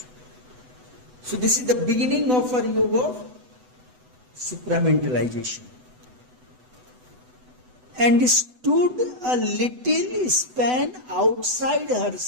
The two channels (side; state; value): left; late; 8.0 ms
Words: So this is the beginning of our yoga of supramentalization. And stood a little span outside